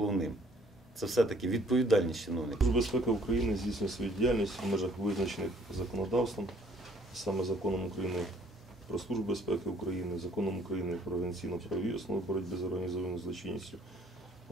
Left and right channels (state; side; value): normal; both; correlation 0.60